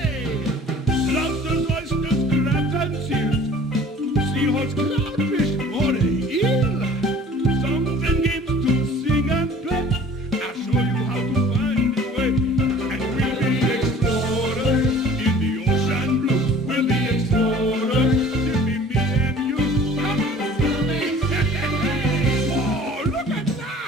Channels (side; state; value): both; normal; correlation 0.48